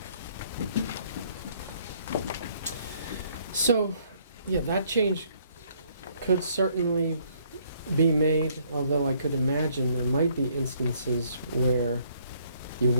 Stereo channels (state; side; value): inverted; both; correlation -0.65